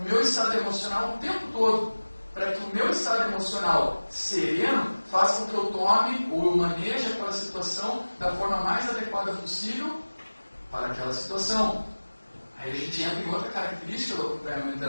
meu estado emocional o tempo todo, para que o meu estado emocional sereno faça com que eu tome ou eu maneje aquela situação da forma mais adequada possível para aquela situação. Aí a gente entra em outra característica do acompanhamento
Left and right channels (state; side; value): inverted; both; correlation -1.00